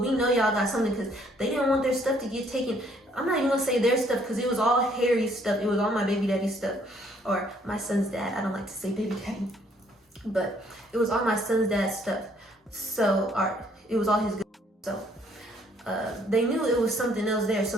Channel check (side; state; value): both; normal; correlation 0.65